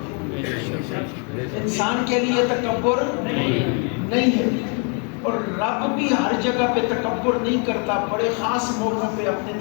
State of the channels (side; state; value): right; quieter; 38.5 dB